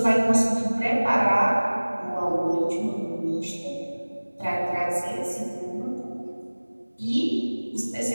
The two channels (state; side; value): inverted; both; correlation -1.00